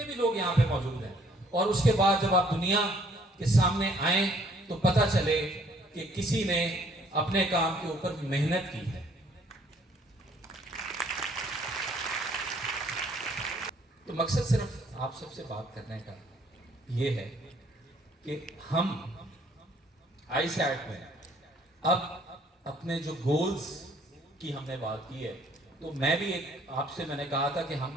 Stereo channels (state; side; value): normal; both; correlation 0.62